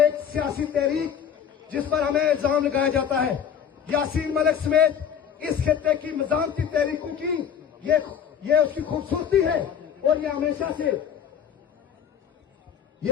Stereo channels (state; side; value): quieter; right; 8.1 dB